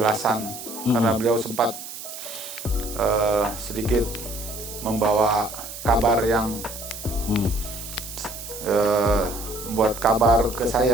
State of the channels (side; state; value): right; noise; hiss, 11 dB below the sound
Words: karena beliau sempat sedikit membawa kabar yang membuat kabar ke